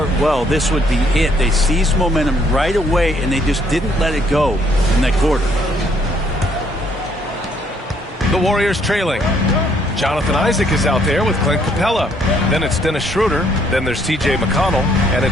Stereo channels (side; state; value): both; normal; correlation 0.67